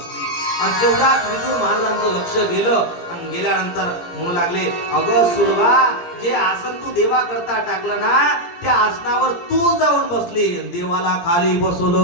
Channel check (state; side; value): late; right; 17 ms